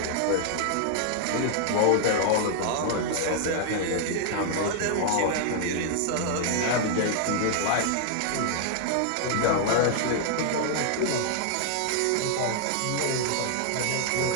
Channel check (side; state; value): both; different; correlation 0.00